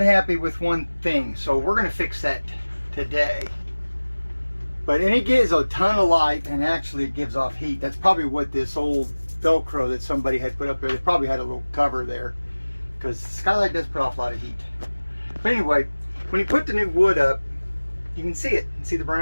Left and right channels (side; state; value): both; inverted; correlation -1.00